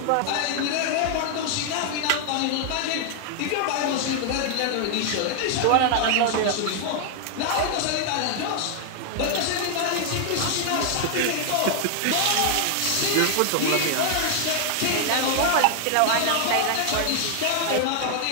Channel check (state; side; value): different; both; correlation 0.00